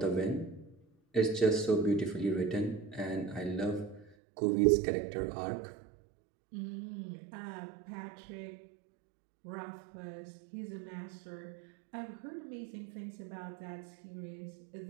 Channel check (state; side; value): drops out; left; at 4.2 s